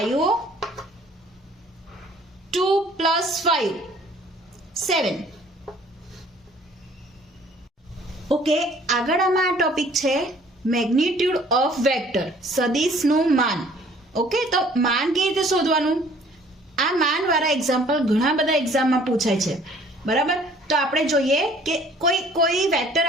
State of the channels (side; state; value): both; normal; correlation 0.55